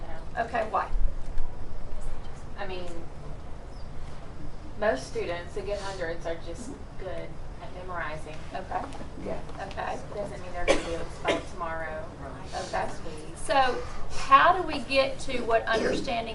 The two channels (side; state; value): both; identical; correlation 1.00